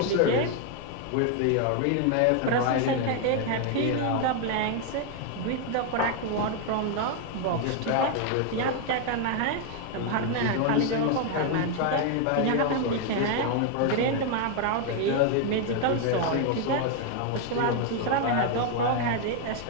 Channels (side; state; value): both; different; correlation 0.00